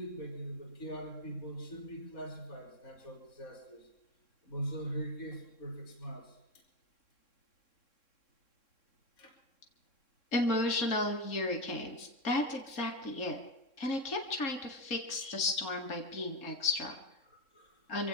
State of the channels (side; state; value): right; late; 3.6 ms